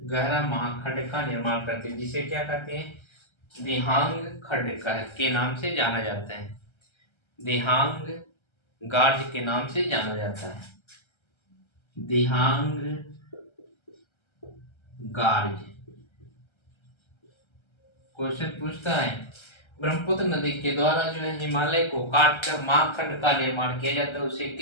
गहरा महाखंड का निर्माण करती है, जिसे क्या कहते हैं? दिहांग खंड के नाम से जाना जाता है। दिहांग गार्ज के नाम से जाना जाता है। दिहांग गार्ज। क्वेश्चन पूछता है ब्रह्मपुत्र नदी के द्वारा जो है हिमालय को काटकर महाखंड का निर्माण किया जाता है, उसे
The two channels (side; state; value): right; late; 1.3 ms